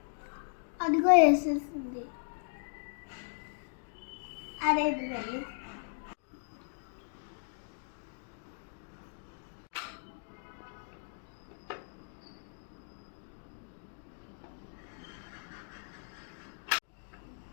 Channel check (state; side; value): silent; right; digital silence